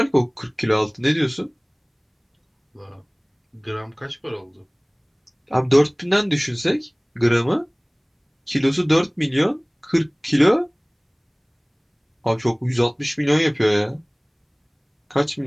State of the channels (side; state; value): both; identical; correlation 1.00